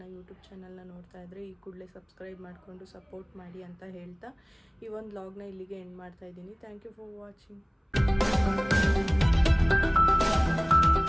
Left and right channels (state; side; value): identical; both; correlation 1.00